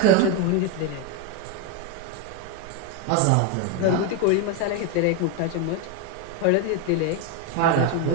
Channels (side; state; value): both; different; correlation 0.02